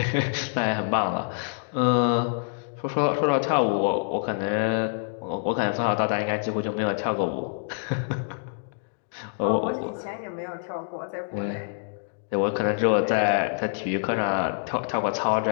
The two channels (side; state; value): right; silent; digital silence